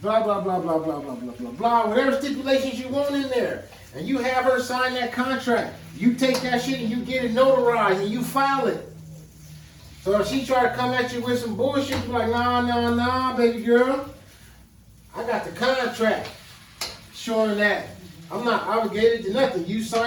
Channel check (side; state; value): both; identical; correlation 1.00